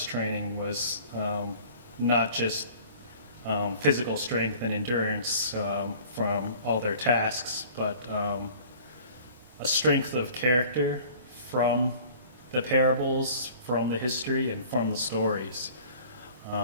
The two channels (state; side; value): inverted; both; correlation -0.48